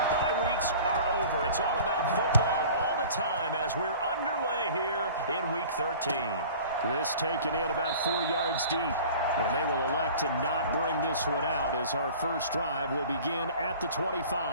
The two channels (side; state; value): both; inverted; correlation -0.44